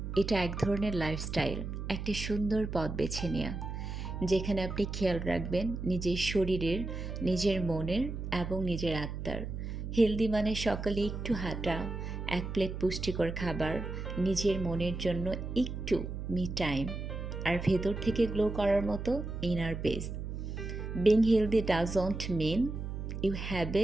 এটা এক ধরনের লাইফস্টাইল, একটা সুন্দর পথ বেছে নেওয়া, যেখানে আপনি খেয়াল রাখবেন নিজের শরীরের, নিজের মনের এবং নিজের আত্মার। হেলদি মানে সকালে একটু হাঁটা, এক প্লেট পুষ্টিকর খাবার, নিজের মনের জন্য একটু মি টাইম, আর ভেতর থেকে গ্লো করার মতো inner peace. Being healthy doesn't mean you have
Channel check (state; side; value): noise; right; hum, 6 dB below the sound